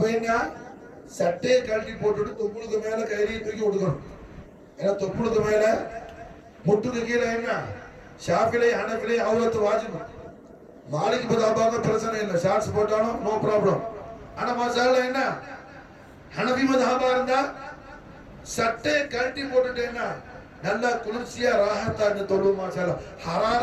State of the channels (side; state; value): both; identical; correlation 1.00